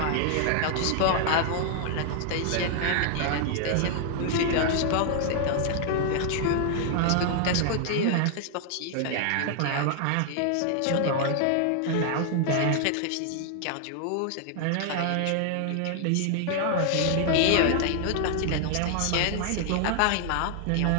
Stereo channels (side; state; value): both; different; correlation 0.00